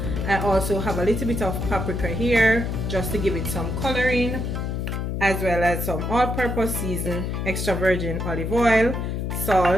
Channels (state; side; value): noise; left; hum, 2 dB below the sound